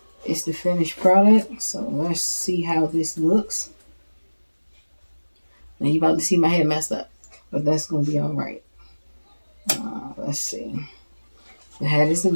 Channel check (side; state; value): both; inverted; correlation -1.00